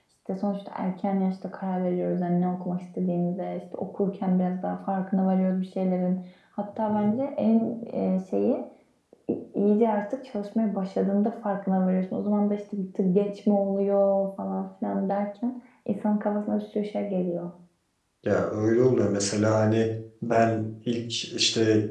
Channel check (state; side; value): identical; both; correlation 1.00